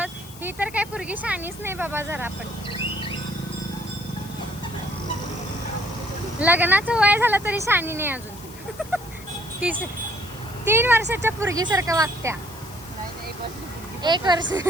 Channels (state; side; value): noise; left; hiss, 18 dB below the sound